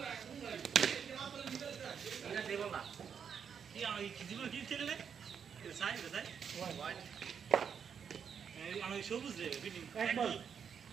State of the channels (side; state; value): left; quieter; 7.2 dB